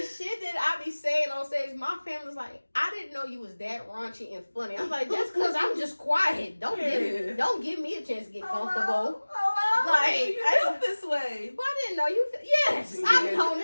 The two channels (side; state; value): both; inverted; correlation -1.00